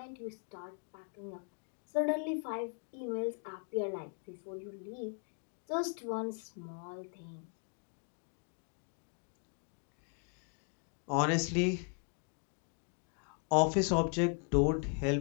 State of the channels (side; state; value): right; quieter; 39.9 dB